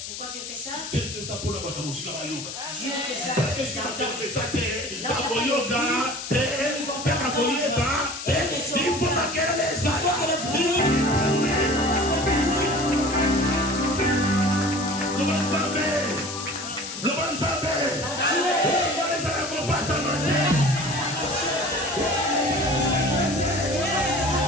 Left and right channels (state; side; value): noise; left; hiss, 8 dB below the sound